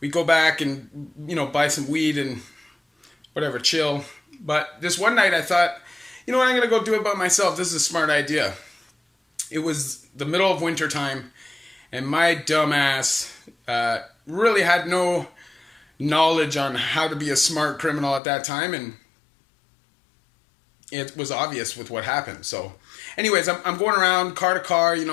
go back and, buy some weed and whatever, chill. But this one night I thought, I'm going to go do it by myself. This is a smart idea. It was the middle of winter time, and my dumb ass really had no knowledge on how to be a smart criminal at that time, and it was obvious with what happened. So anyways, I'm going around car to car,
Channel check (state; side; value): drops out; right; at 18.2 s